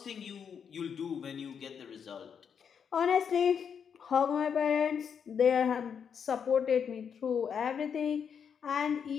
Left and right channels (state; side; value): quieter; right; 7.2 dB